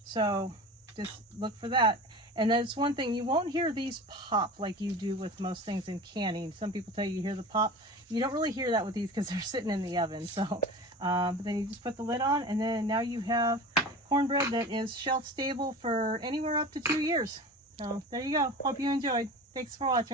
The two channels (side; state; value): both; normal; correlation 0.35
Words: So just look for that. And that's one thing, you won't hear these pop like you do with most things in canning. Some people tell you hear the pop. You don't really hear that with these because they're sitting in the oven. So, but then you just put the lid on, and then now you have cornbread that is shelf stable for anywhere up to 2 years. So there you go. Hope you enjoyed. Thanks for